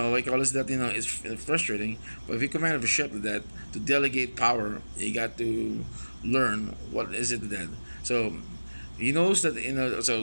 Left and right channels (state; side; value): inverted; both; correlation -1.00